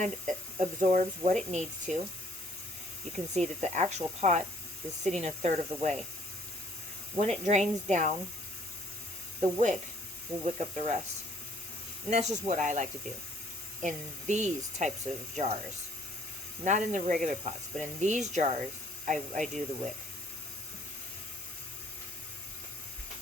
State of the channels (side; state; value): both; normal; correlation 0.62